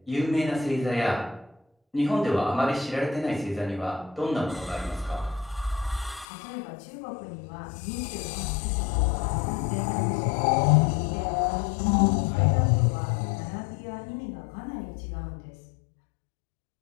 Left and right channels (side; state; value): right; drops out; at 6.2 s